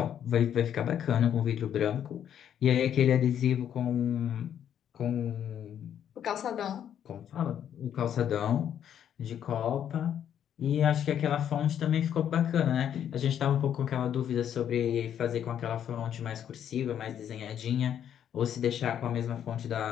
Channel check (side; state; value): right; quieter; 9.5 dB